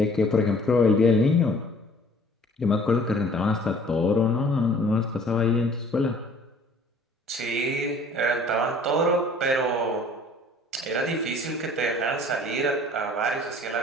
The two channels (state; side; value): normal; both; correlation 0.52